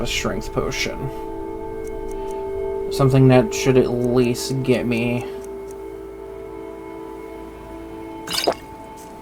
a strength potion. Something that should at least get me...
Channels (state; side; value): identical; both; correlation 1.00